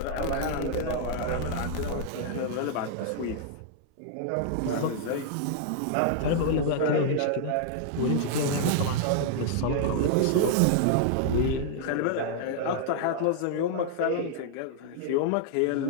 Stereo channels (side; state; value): both; different; correlation -0.01